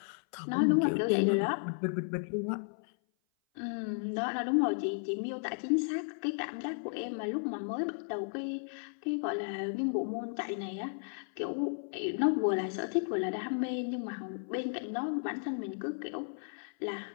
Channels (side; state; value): right; silent; 55 dB below the other